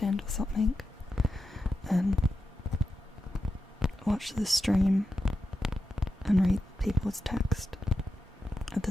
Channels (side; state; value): both; normal; correlation 0.89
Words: or something and watch the stream and read people's text. At